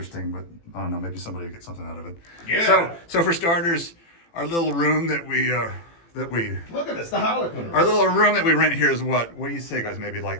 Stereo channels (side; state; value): right; late; 18 ms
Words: But I don't know, maybe somebody will get something out of it. Yeah. So for starters, our little room that we Look at this, the Harlequin room. our little room that we rent here is what do you say, guys? Maybe